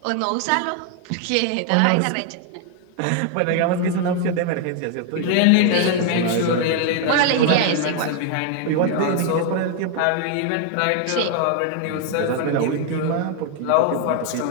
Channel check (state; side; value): different; both; correlation 0.01